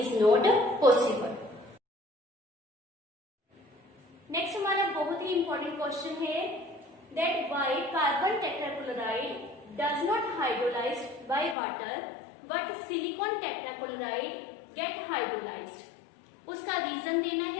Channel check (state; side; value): drops out; right; at 11.6 s